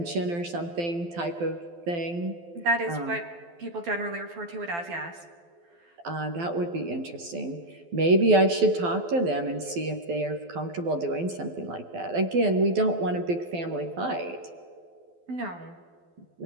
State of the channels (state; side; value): late; left; 12 ms